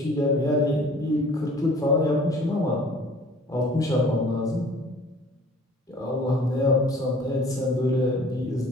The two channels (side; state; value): both; normal; correlation 0.50